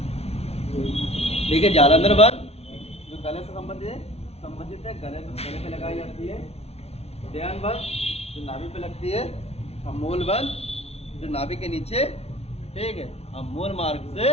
ठीक है, जालंधर बंद जो गले से संबंधित है, गले पे लगाई जाती है। ध्यान बंद जो नाभि पे लगती है। और मूल बंद जो नाभि के नीचे, ठीक है, और मूल मार्ग से,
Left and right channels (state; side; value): late; right; 0.30 ms